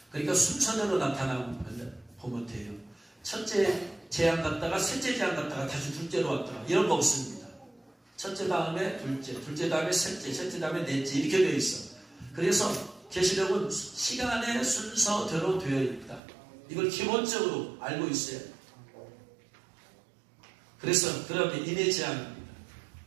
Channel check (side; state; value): left; drops out; at 16.2 s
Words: 그러니까 순서대로 나타나면 보면 돼요. 첫째 재앙 갔다가 셋째 재앙 갔다가 다시 둘째로 왔다가 이런 거 없습니다. 첫째 다음에 둘째, 둘째 다음에 셋째, 셋째 다음에 넷째 이렇게 되어 있어. 그래서 계시록은 시간의 순서대로 되어 있다. 이걸 기본적으로 알고 있어요. 그래서 그러면 인해 재앙입니다.